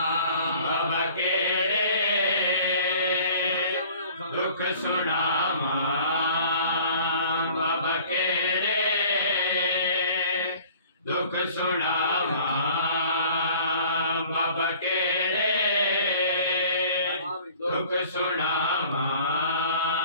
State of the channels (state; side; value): inverted; both; correlation -0.50